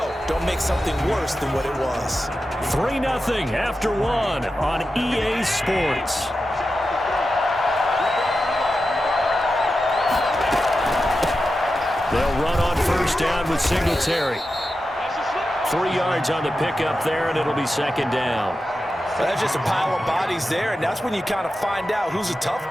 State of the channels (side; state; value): both; normal; correlation 0.91